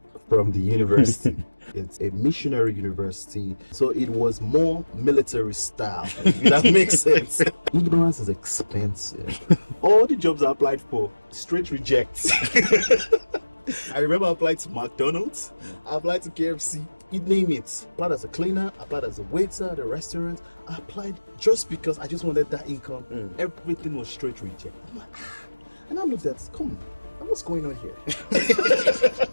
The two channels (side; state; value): both; inverted; correlation -1.00